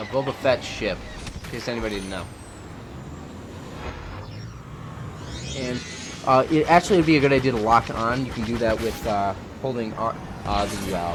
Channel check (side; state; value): both; identical; correlation 1.00